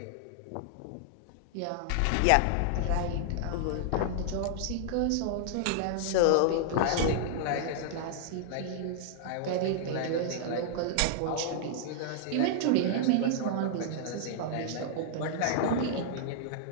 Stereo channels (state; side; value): different; both; correlation -0.01